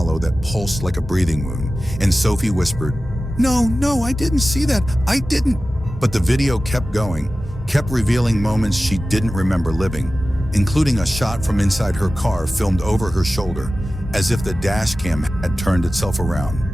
that pulsed like a breathing wound, and Sophie whispered, No, I didn't see that, I didn't." But the video kept going, kept revealing moments she didn't remember living, including a shot from inside her car filmed over her shoulder, as if the dashcam had turned itself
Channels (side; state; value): both; normal; correlation 0.95